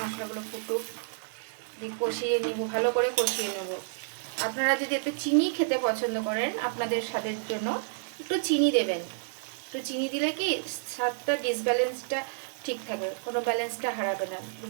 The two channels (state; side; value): silent; left; digital silence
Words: মশলাগুলো ফুটুক, দিয়ে কষিয়ে নিব, ভালো করে কষিয়ে নেব। আপনারা যদি এতে চিনি খেতে পছন্দ করেন আপনাদের স্বাদের জন্য একটু চিনি দেবেন। একটু চিনি দিলে কি স্বাদটা ডিসব্যালেন্সটা ঠিক থাকে, কোনো ব্যালেন্সটা হারাবে না,